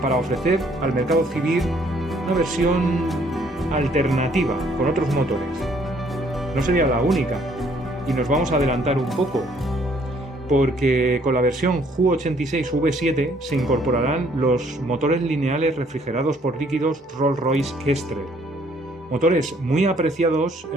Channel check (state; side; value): normal; both; correlation 0.63